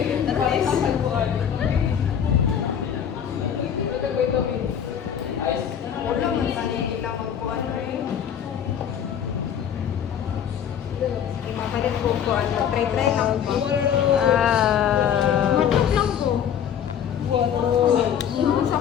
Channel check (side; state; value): right; quieter; 8.7 dB